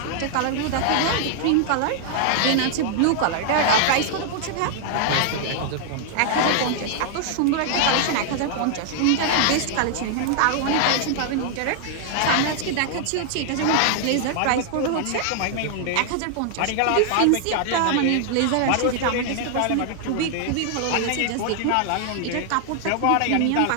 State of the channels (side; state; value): both; different; correlation 0.00